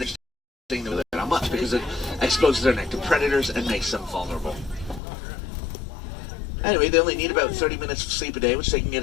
not much because it exposes their neck to predators and makes them vulnerable. Anyway, they only need about 30 minutes of sleep a day, which they can get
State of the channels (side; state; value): right; drops out; at 5.0 s